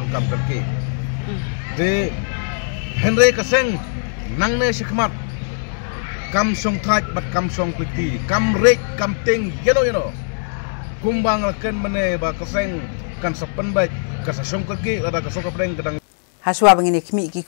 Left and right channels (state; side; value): silent; right; digital silence